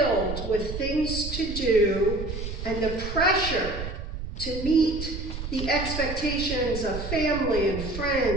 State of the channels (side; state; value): right; noise; rumble, 7 dB below the sound